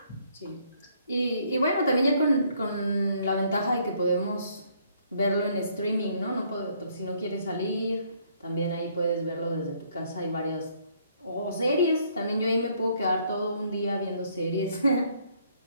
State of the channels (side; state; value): both; inverted; correlation -0.66